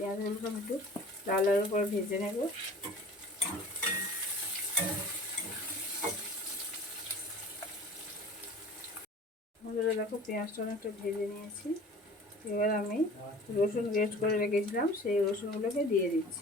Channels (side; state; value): both; normal; correlation 0.43